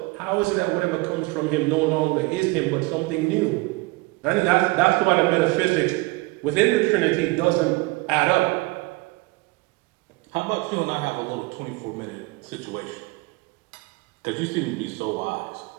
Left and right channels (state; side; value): quieter; left; 23.4 dB